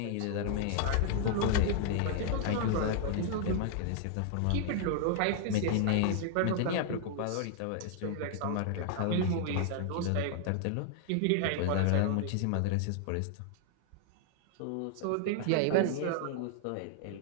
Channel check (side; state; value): both; different; correlation 0.00